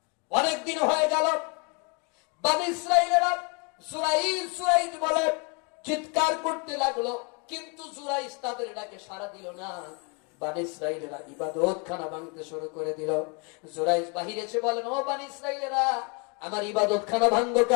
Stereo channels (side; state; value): right; quieter; 32.7 dB